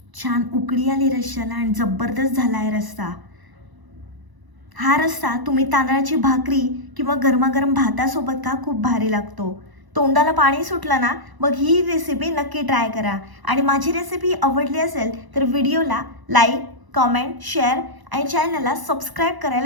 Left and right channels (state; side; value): late; left; 1.0 ms